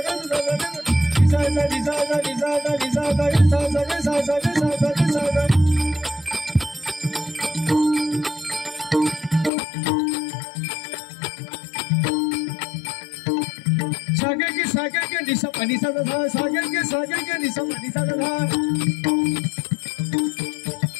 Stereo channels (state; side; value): drops out; right; at 9.5 s